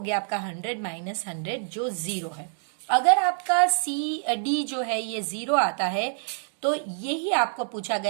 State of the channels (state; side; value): silent; left; digital silence